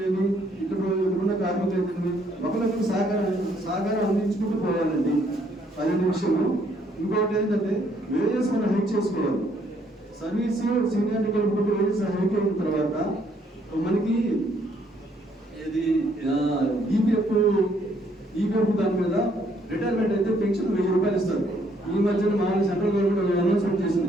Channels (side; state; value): both; normal; correlation 0.68